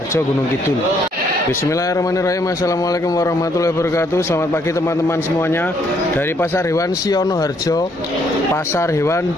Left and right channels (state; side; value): normal; both; correlation 0.69